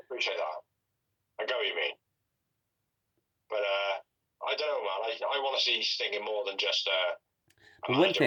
that. I get what you mean. But I don't know, man. I want to see Sting in more than just a manager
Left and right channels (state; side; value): identical; both; correlation 1.00